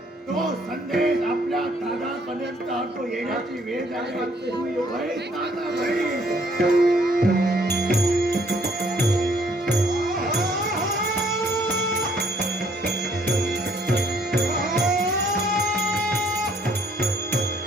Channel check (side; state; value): both; normal; correlation 0.64